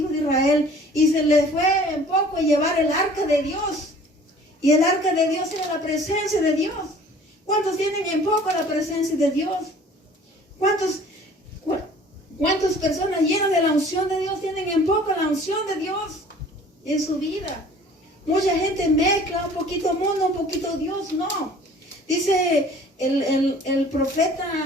de Israel y se les fue en poco llevar el arca de Dios. Y el arca de Dios era la presencia de Dios. ¿Cuántos tienen en poco la presencia de Dios? ¿Cuántas personas llenas de la unción de Dios tienen en poco la unción de Dios en su vida? Mucha gente mezcla un poquito mundo, un poquito Dios, no. Dice el profeta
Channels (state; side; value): normal; both; correlation 0.50